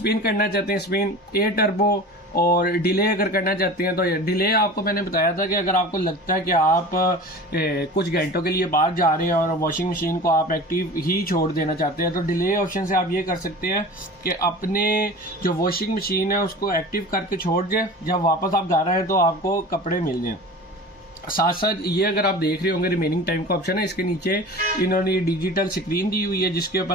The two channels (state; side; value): normal; both; correlation 0.36